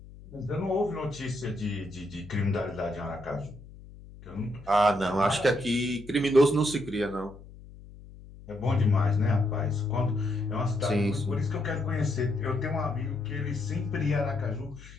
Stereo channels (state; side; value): noise; left; hum, 18 dB below the sound